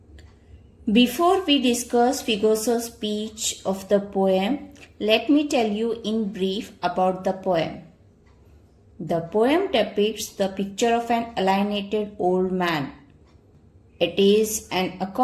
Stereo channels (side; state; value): both; identical; correlation 1.00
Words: Before we discuss figures of speech of the poem, let me tell you in brief about the poem. The poem depicts the picture of an alienated old man. It is an